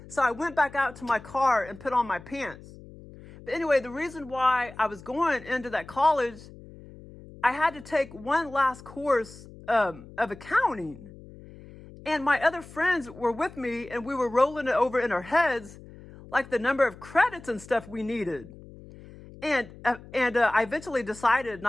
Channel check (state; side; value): noise; left; hum, 18 dB below the sound